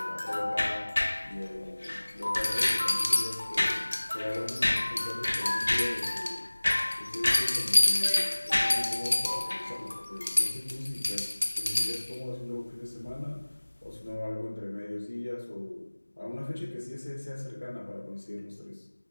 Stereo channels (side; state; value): both; inverted; correlation -1.00